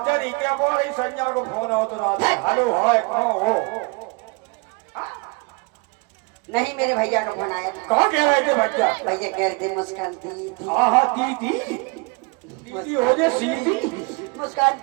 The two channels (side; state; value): left; quieter; 29.7 dB